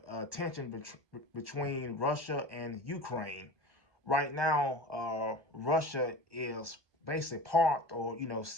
tension between Russia and Ukraine. Right now, Russia is basically parked or,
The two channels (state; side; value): late; left; 1.2 ms